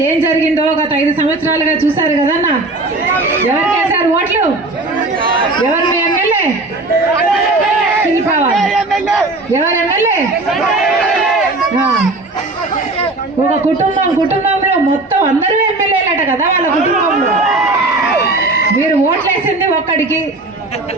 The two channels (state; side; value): quieter; left; 3.1 dB